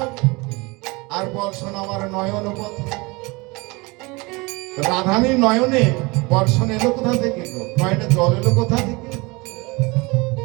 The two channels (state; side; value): quieter; left; 25.5 dB